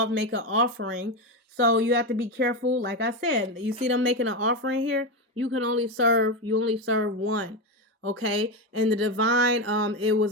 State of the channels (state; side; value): normal; both; correlation 0.13